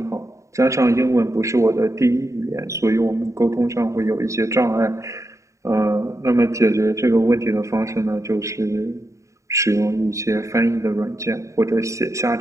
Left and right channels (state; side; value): late; left; 0.15 ms